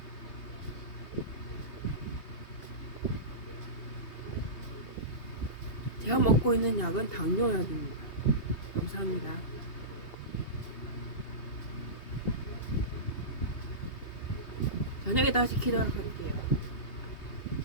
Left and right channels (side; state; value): right; late; 2.8 ms